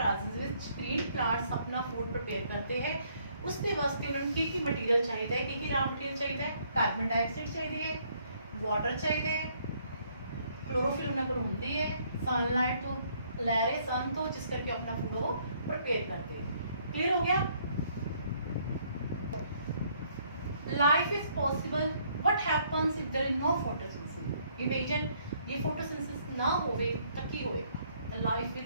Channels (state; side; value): inverted; both; correlation -0.66